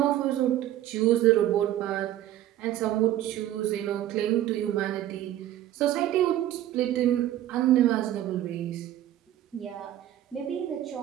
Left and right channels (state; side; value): quieter; left; 12.9 dB